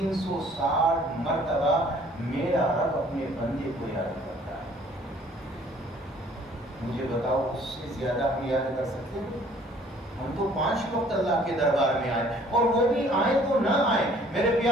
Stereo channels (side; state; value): both; normal; correlation 0.56